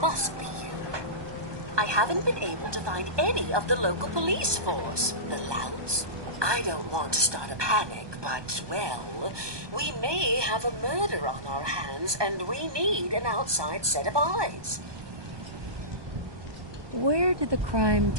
be you. I haven't been able to find any of the local police force. The louts? I don't want to start a panic, but, well, we may have a murder on our hands, and we need an outside set of eyes. Where did the crime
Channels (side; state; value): left; late; 1.2 ms